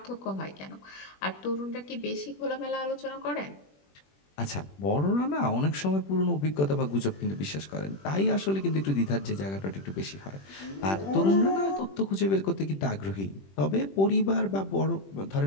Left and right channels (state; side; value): late; right; 21 ms